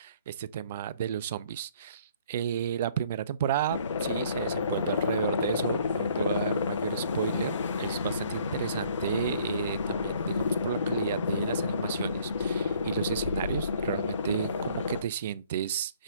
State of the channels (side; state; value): both; inverted; correlation -0.59